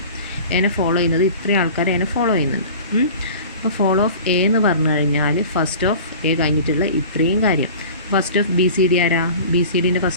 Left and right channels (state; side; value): inverted; both; correlation -0.39